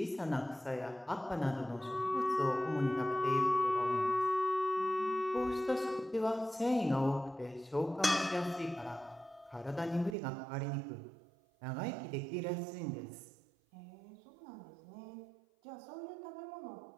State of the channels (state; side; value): drops out; left; at 10.2 s